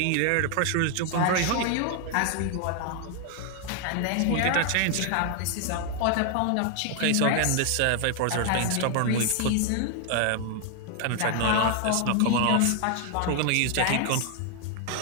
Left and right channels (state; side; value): different; both; correlation 0.00